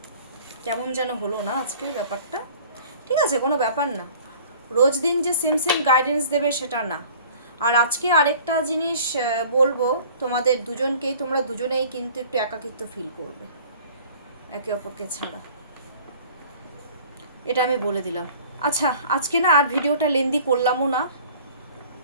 কেমন যেন হলো না আজকের ব্যাপারটা। ঠিক আছে, কোনো ব্যাপার না, রোজ দিন যে সেম সেম গাইডেন্স দেবে সেটা না। আর আজকে আরেকটা জিনিস বলবো তোমাদের দুজনকেই, তোমরা দুজনেই কিন্তু একটু একাকিত্ব ফিল করবে একে অপরকে ছাড়া, এটা আমি বলে দিলাম। আচ্ছা, আজকে না আর ভিডিওটা লেন্দি করলামও না।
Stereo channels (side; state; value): both; inverted; correlation -0.49